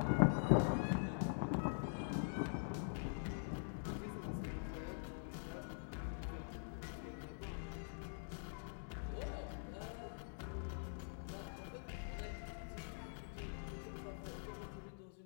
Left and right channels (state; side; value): silent; right; digital silence